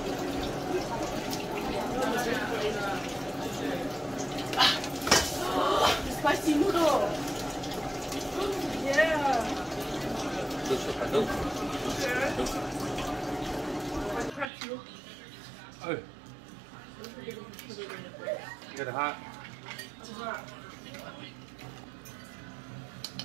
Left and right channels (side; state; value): left; drops out; at 14.5 s